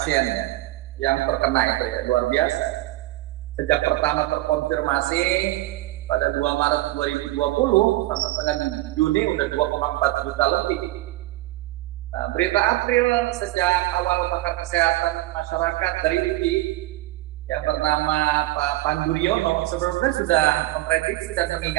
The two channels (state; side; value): quieter; left; 18.1 dB